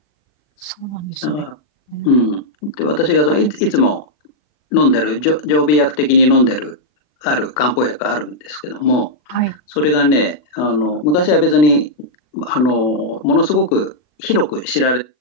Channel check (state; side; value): late; right; 40 ms